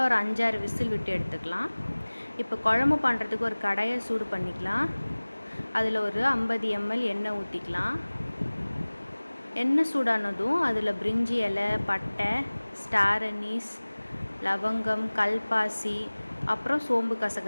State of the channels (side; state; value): both; inverted; correlation -1.00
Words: ஒரு 5-6 விசில் விட்டு எடுத்துக்கலாம். இப்போ குழம்பு பண்ணுறதுக்கு ஒரு கடாயை சூடு பண்ணிக்கலாம். அதில் ஒரு 50 ml எண்ணெய் ஊற்றிக்கலாம். எண்ணெய் சூடானதும் அதில் பிரிஞ்சி இலை, பட்டை, ஸ்டார் அனீஸ், லவங்கம், கல்பாசி, அப்புறம் சோம்பு